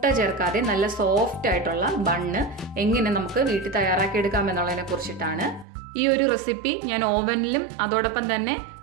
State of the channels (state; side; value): drops out; left; at 5.7 s